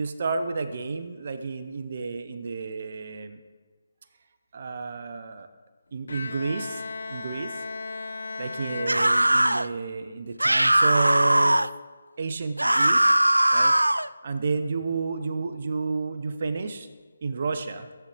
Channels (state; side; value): inverted; both; correlation -0.97